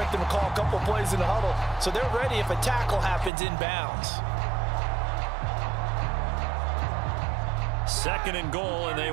them to call a couple plays in the huddle, so they're ready if a tackle happens inbounds. 2nd and goal, and they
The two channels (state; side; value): drops out; left; at 3.3 s